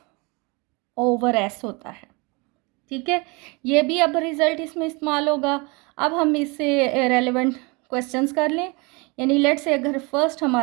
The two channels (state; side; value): quieter; left; 28.2 dB